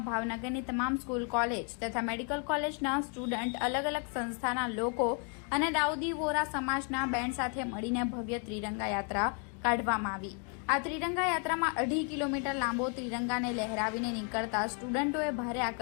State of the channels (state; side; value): quieter; right; 39.6 dB